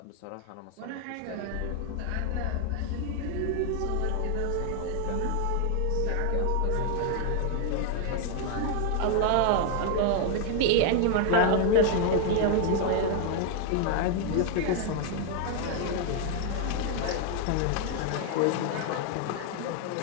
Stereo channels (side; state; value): both; different; correlation 0.00